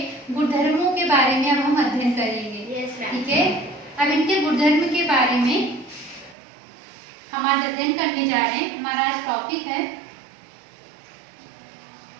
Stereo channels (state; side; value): drops out; left; at 6.4 s